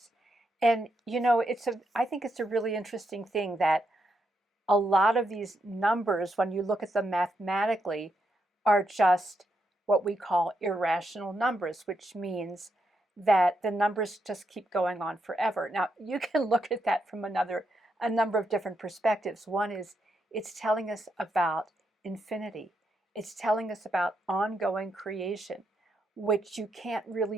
and I think it's a really interesting thing that a lot of these numbers, when you look at them mathematically, are just what we call irrational numbers, which means that the numbers just keep going on forever. Now, you can look at that from a number of different perspectives. One is it's telling us about infinity. It's telling us about ongoing creation, which you can't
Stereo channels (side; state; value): both; normal; correlation 0.81